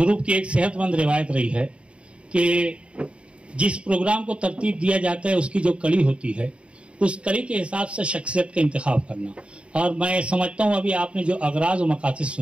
की एक सेहतमंद रिवायत रही है कि जिस प्रोग्राम को तरतीब दिया जाता है उसकी जो कड़ी होती है उस कड़ी के हिसाब से शख्सियत का इंतखाब करना। और मैं समझता हूँ, अभी आपने जो अगराज और मकासद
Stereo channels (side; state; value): left; late; 0.059 ms